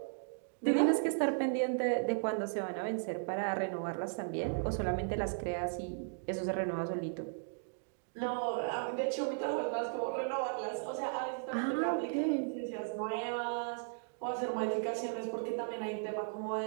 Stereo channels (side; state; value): left; silent; digital silence